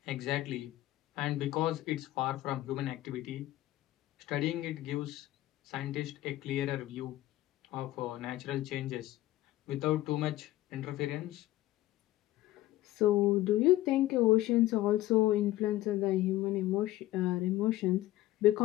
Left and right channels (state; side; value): quieter; right; 15.8 dB